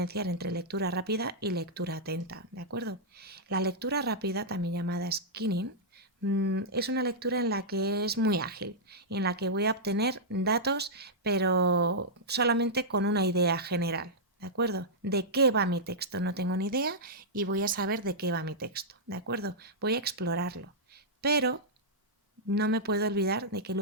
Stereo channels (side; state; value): both; normal; correlation -0.10